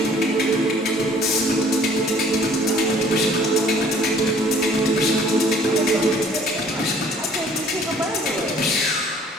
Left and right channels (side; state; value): both; normal; correlation 0.56